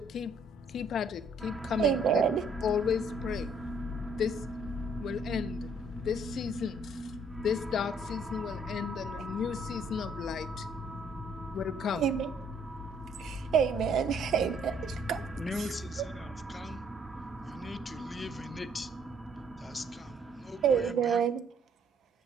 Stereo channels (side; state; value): both; normal; correlation 0.65